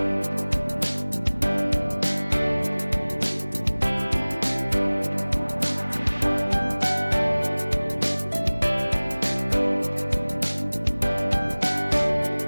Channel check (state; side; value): inverted; both; correlation -1.00